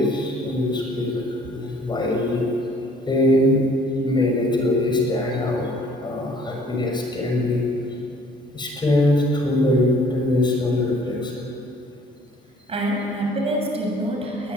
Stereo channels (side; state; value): both; normal; correlation 0.56